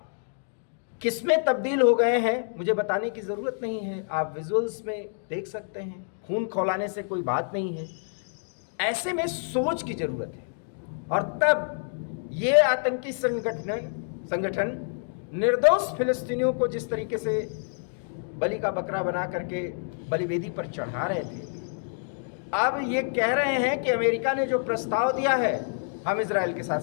किसमें तब्दील हो गए हैं मुझे बताने की ज़रूरत नहीं है, आप विजुअल्स में देख सकते हैं। खून खौलाने से कोई बात नहीं है, ऐसे में सोच की ज़रूरत है। और तब ये आतंकी संगठन निर्दोष फिलिस्तीनियों को जिस तरीके से बलि का बकरा बना करके बलिवेदी पर चढ़ा रहे थे, अब ये कह रहे हैं कि अमेरिका ने जो प्रस्ताव दिया है हम इजराइल के साथ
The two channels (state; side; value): silent; right; digital silence